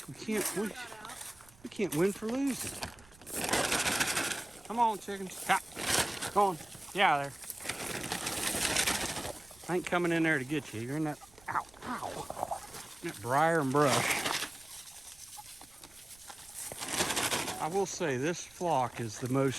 we can't win for losing. Come on, chickens. Ha. Come on. Get out of there. I ain't coming in there to get you. You're in that, ow, that briar and brush. I will say this flock is the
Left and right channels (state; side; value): noise; right; rumble, 26 dB below the sound